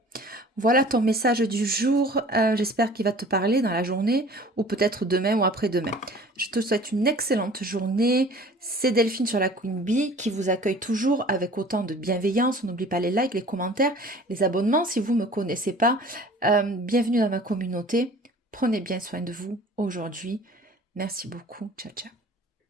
Voilà ton message du jour. J'espère qu'il va te parler dans la journée ou peut-être demain ou après-demain. Je te souhaite une excellente journée. C'est Delphine sur la Queen Bee qui vous accueille toujours avec autant de bienveillance. On n'oublie pas les likes, les commentaires, les abonnements si vous ne me connaissez pas. Bienvenue dans ma communauté. Prenez bien soin de vous aujourd'hui. Merci beaucoup. Ciao, ciao.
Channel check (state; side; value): normal; both; correlation 0.47